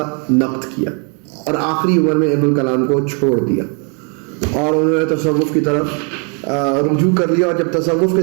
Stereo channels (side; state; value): left; quieter; 37.8 dB